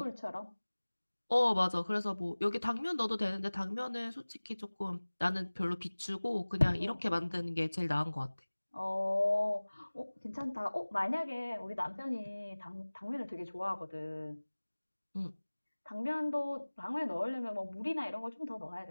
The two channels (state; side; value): inverted; both; correlation -1.00